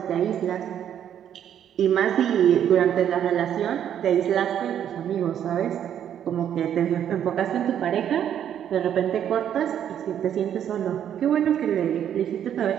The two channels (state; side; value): quieter; left; 9.7 dB